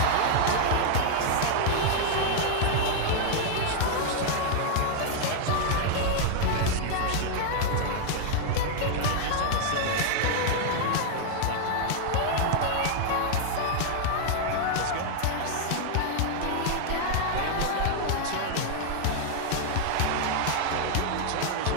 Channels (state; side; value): different; both; correlation 0.00